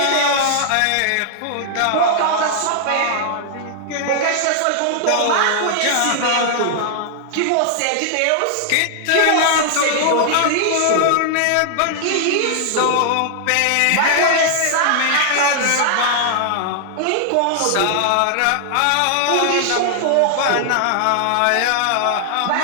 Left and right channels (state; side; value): different; both; correlation 0.00